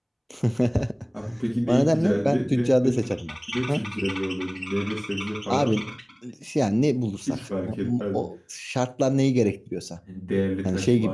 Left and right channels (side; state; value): both; identical; correlation 1.00